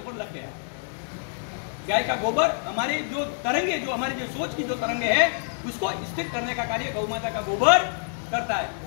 लग गया। गाय का गोबर हमारे जो तरंगे, जो हमारे जो सोच की जो तरंगे है उसको स्थिर करने का कार्य गौ माता का गोबर करता है।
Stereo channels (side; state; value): right; silent; 61 dB below the other